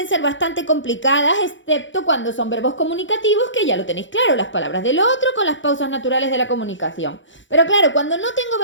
ser bastante complicadas, excepto cuando son verbos comunicativos, que ya lo tenéis claro, las palabras del otro con las pausas naturales de la comunicación. Pero claro, cuando no tengo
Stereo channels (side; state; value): right; late; 0.55 ms